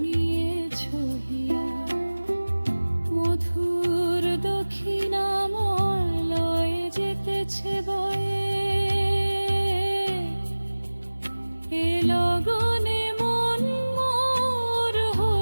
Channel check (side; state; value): both; inverted; correlation -1.00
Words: হিয়া। মধুর দক্ষিণামলয়ে যেতেছে বয়ে, এ লগনে মন মোর